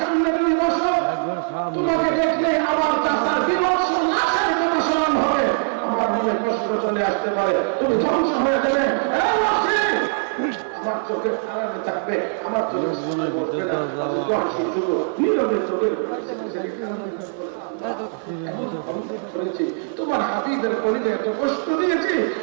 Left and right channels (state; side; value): silent; left; 56 dB below the other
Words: সামনে তুমি বসো, তোমাকে দেখলে আমার চাচার বিভৎস নাশের কথা স্মরণ হবে, আমার মনে কষ্ট চলে আসতে পারে, তুমি ধ্বংস হয়ে গেলে আমার চোখের আড়ালে থাকবে, আমার চোখের সামনে বসবে না। শুধু নীরবে চোখের তোমার হাবিবের কলিজায় এত কষ্ট দিয়েছি,